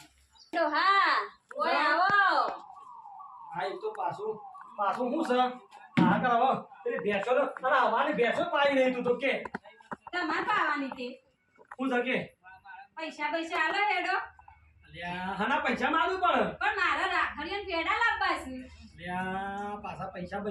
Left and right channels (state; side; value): identical; both; correlation 1.00